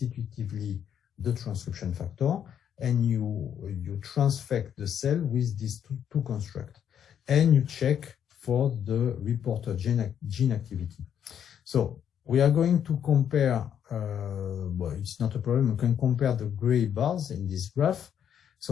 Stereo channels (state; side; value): quieter; right; 9.0 dB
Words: the transcription factor, and you transfect the cell with these two constructs, and you check for the reporter gene activity. So we are going to compare, well, it's not a problem, we can compare the gray bars in this graph.